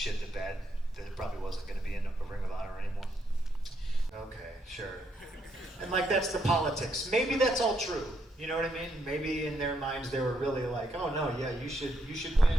the bed, that it probably wasn't going to be in a Ring of Honor anymore. Okay, sure. And like that's the politics. Maybe that's all true. You know what I mean? Maybe in their minds they were really like, oh no, yeah, you should win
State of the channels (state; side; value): normal; both; correlation 0.77